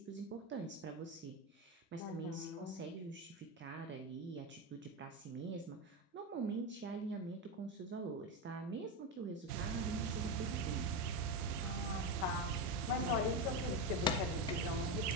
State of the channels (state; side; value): normal; both; correlation 0.13